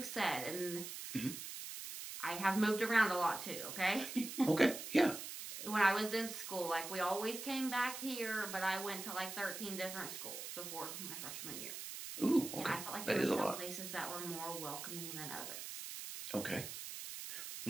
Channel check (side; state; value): right; noise; hiss, 8 dB below the sound